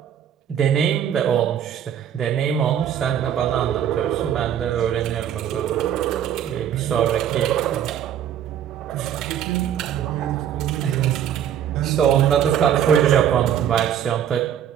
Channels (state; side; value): quieter; left; 9.7 dB